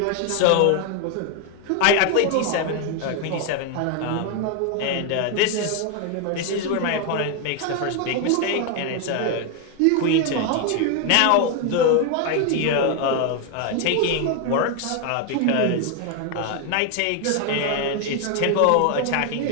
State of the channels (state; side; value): different; both; correlation 0.01